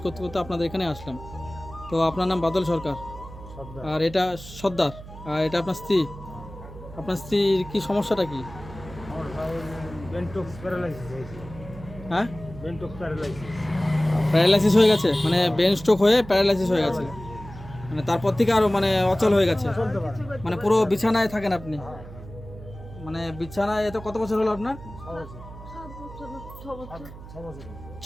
করতে করতে আপনাদের এখানে আসলাম। তো আপনার নাম বাদল সরকার, আর এটা সর্দার, আর এটা আপনার স্ত্রী। আপনার স্ত্রীর কি সমস্যাটা কি? হ্যাঁ, প্যারালাইসিস হয়ে গেছে, মানে ব্রেন স্ট্রোক হয়ে প্যারালাইসিস হয়ে গেছে, মানে তারপর থেকে আরও মানে অচল হয়ে গেছে, মানে পুরো বিছানায় থাকেন আপনি, মানে বিছানায়। এত কত বছর হলো আপনার?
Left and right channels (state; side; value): noise; right; hum, 15 dB below the sound